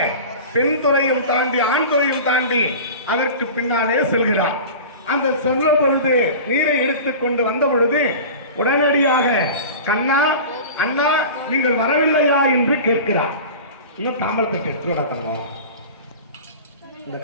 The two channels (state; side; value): inverted; both; correlation -0.35